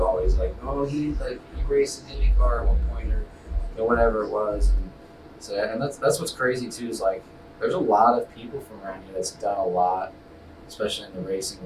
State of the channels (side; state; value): both; identical; correlation 1.00